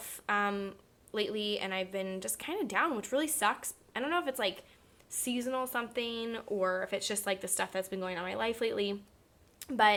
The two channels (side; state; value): both; identical; correlation 1.00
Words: lately, and I've been just kind of down, which really sucks. I don't know if it's like seasonal something or if it's just like the stuff that's been going on in my life lately.